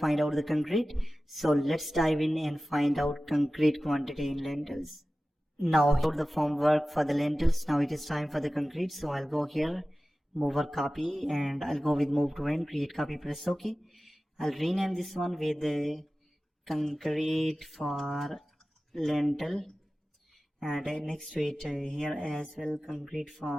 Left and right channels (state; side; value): normal; both; correlation 0.96